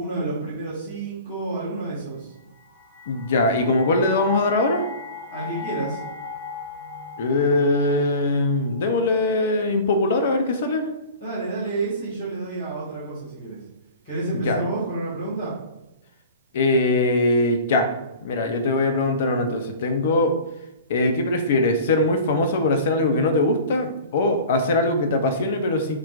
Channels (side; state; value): both; inverted; correlation -0.40